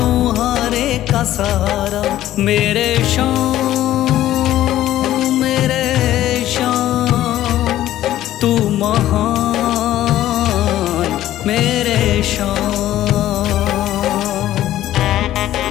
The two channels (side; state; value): right; quieter; 13.5 dB